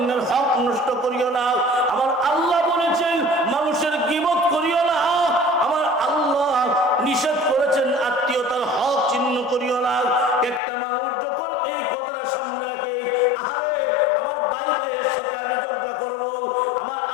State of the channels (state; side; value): drops out; right; at 10.6 s